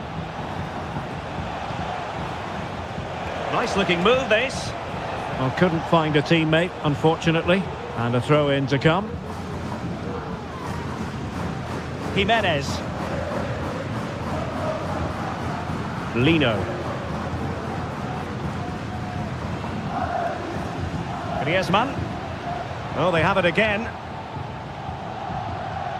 Nice looking move this. Well, couldn't find a teammate, unfortunately. And a throw in to come. Jimenez. Lino. Griezmann. Oh, they have it again.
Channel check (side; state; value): both; identical; correlation 1.00